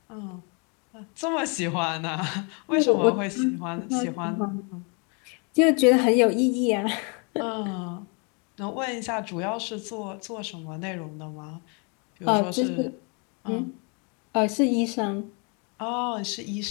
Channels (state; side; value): quieter; right; 35.1 dB